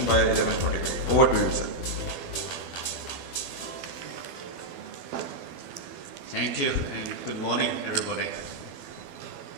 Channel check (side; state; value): left; late; 12 ms